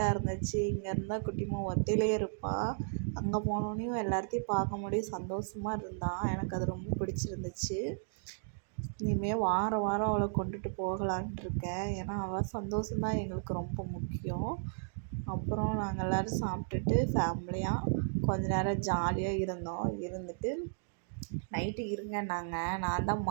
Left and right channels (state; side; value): silent; left; digital silence